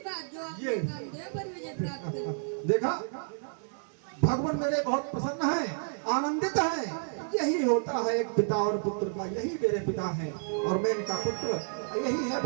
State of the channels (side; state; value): left; silent; digital silence